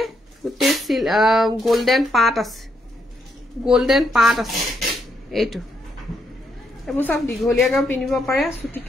গুটে গোল্ডেন পাত আছে এটো এবোৰ সব দিঘলিয়াকেও পিন্ধিব পাৰে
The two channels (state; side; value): normal; both; correlation 0.77